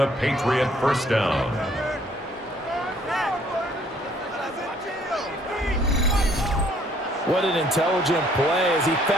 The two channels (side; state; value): both; normal; correlation 0.62